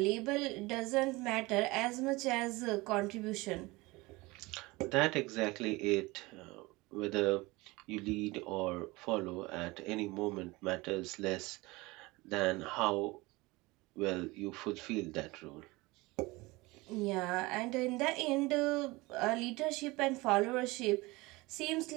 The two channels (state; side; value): quieter; left; 22.4 dB